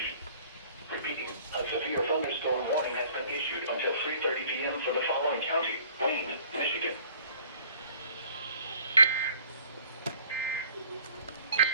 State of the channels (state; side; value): inverted; both; correlation -0.54